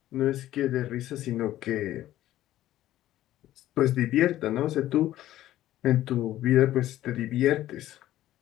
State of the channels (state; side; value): quieter; right; 13.9 dB